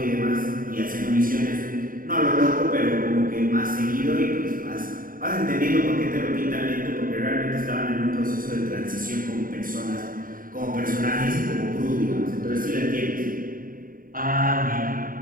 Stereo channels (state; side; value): late; left; 0.41 ms